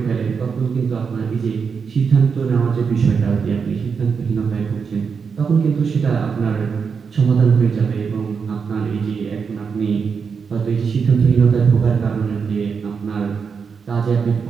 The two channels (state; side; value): quieter; left; 5.9 dB